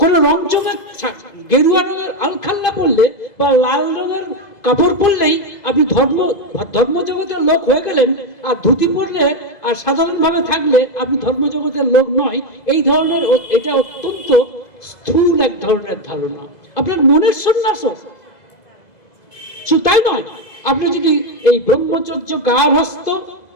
রংচঙে গেরুয়া রঙের আলখাল্লা পড়লে বা লাল রঙের কাপড় পরলেই আপনি ধর্মজগতের লোক হয়ে গেলেন, আর ধুতি পরলে আর সাধারণভাবে থাকলে আপনি ধর্মজগতের লোক নয়। এই ধরনের, এটা অত্যন্ত স্থূল এক ধরনের ধারণা। আপনার মনের সন্ন্যাস, তাই নয়, আপনি যদি এই ব্রহ্মচর্য, গার্হস্থ্য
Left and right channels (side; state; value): right; late; 2.0 ms